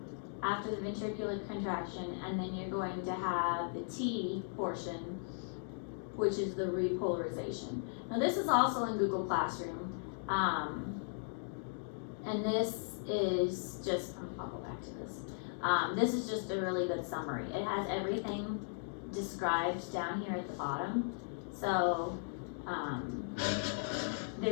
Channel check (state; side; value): silent; right; digital silence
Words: after the ventricular contraction, and then you're going to have the T portion, which is the repolarization. Now this is also in Google Classroom, and this is just, I'll go back to this. This is just a really good summary. It has everything described down here at the bottom. So